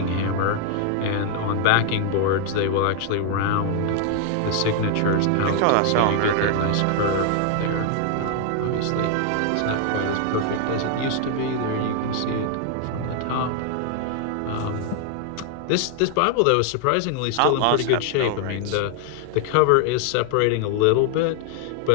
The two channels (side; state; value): both; different; correlation 0.00